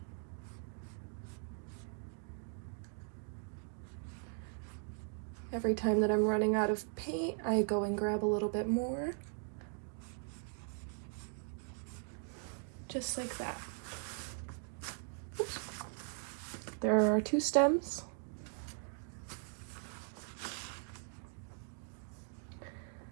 Every time that I'm running out of paint, I go and grab a little bit more. just like that. Oops. There are our 2 stems.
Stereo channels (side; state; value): left; silent; 51 dB below the other